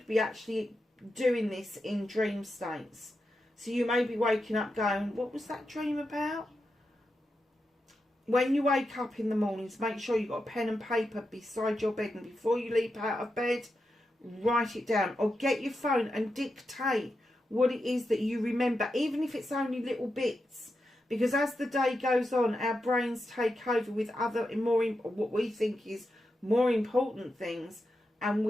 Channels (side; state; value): both; normal; correlation 0.88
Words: be actually doing this in dream states. So you may be waking up going, what was that dream about? When you wake up in the mornings, make sure you've got a pen and paper beside your bed. And before you leap out of bed, write it down. Or get your phone and dictate what it is that you remember, even if it's only little bits. Because as the day goes on, our brains take over with other, what we think is more important things. And